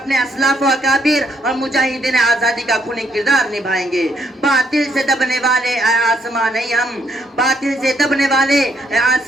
اسلاف و اکابر اور مجاہدین آزادی کا خونی کردار نبھائیں گے۔ باطل سے دبنے والے اے آسمان نہیں ہم، باطل سے دبنے والے اے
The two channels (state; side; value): normal; both; correlation 0.72